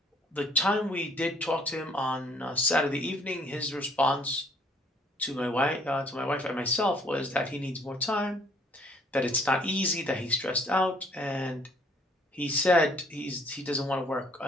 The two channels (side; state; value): both; normal; correlation 0.61